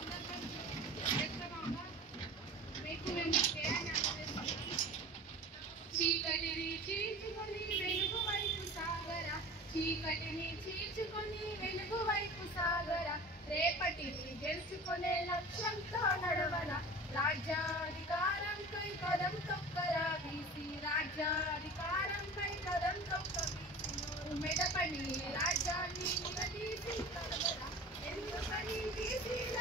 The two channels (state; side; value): normal; both; correlation 0.37